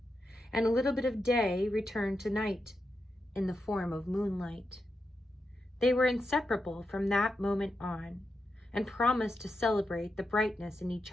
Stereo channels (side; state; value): both; normal; correlation 0.87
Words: and a little bit of Day returned to Night in the form of moonlight. They were inseparable from that moment on, and promised to celebrate the brightness in each